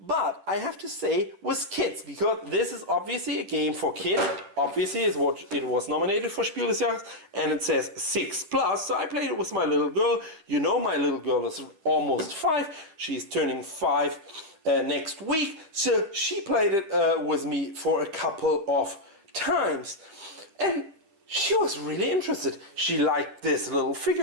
I have to say, with kids, because this is obviously a game for kids, obviously is what it was nominated for Spiel des Jahres, and it says 6+, so I played it with my little girl. You know, my little girl is almost 5, she's turning 5 next week, so she played it with me for a couple of times, and she was really interested. She liked this little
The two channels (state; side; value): late; left; 10 ms